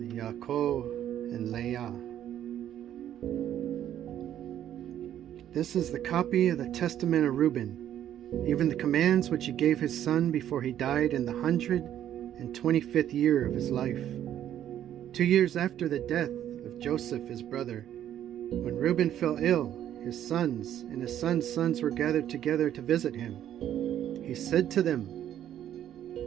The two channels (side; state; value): left; quieter; 11.0 dB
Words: Yaakov and Leah. This is the copy of the testament of Rueben, even the commands which he gave his son before he died in the 125th year of his life, 2 years after the death of Joseph his brother. When Rueben fell ill, his sons and his sons' sons were gathered together to visit him. He said to them,